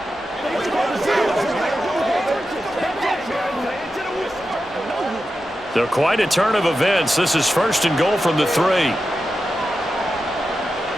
They're quite a turn of events. This is first and goal from the 3.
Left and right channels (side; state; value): both; normal; correlation 0.91